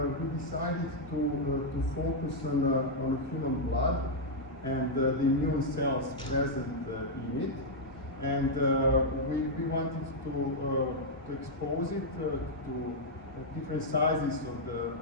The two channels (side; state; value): both; normal; correlation -0.04